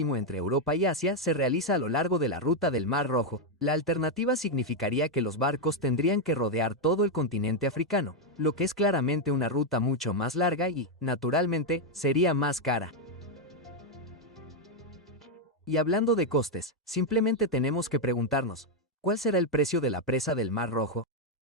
entre Europa y Asia se realiza a lo largo de la ruta del Mar Rojo. La alternativa significaría que los barcos tendrían que rodear todo el continente africano, lo que es claramente una ruta mucho más larga y, naturalmente, sería más cara. Y hablando de costes, simplemente tenemos que preguntarnos, ¿cuál será el precio de la presa del Mar Rojo?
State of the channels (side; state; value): both; normal; correlation 0.02